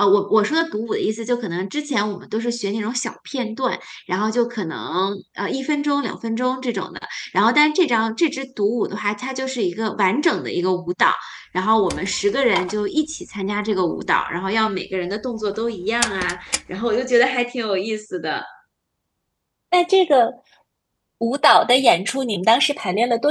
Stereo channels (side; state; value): both; identical; correlation 1.00